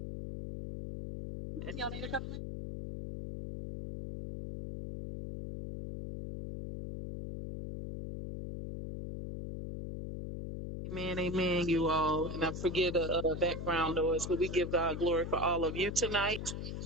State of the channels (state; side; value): noise; left; hum, 6 dB below the sound